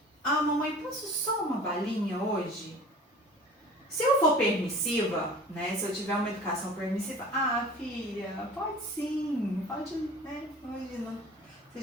ah, mamãe, posso só uma balinha hoje? Se eu for permissiva, né, se eu tiver uma educação permissiva, ah, filha, pode sim, pode, né, hoje não.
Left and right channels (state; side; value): normal; both; correlation 0.43